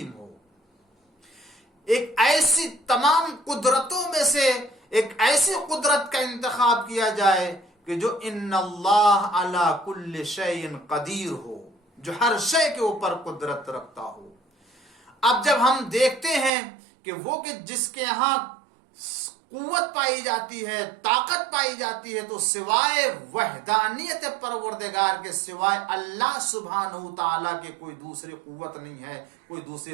ہو. ایک ایسی تمام قدرتوں میں سے ایک ایسی قدرت کا انتخاب کیا جائے کہ جو ان اللہ علی کل شیء قدیر ہو، جو ہر شے کے اوپر قدرت رکھتا ہو. اب جب ہم دیکھتے ہیں کہ وہ کہ جس کے ہاں قوت پائی جاتی ہے، طاقت پائی جاتی ہے، تو سوائے وحدانیت پروردگار کے، سوائے اللہ سبحانہ تعالیٰ کے کوئی دوسری قوت نہیں ہے، کوئی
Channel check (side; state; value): left; drops out; at 16.5 s